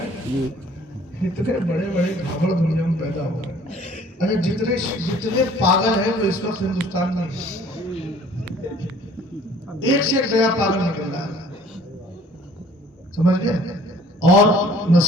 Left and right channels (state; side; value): normal; both; correlation 0.54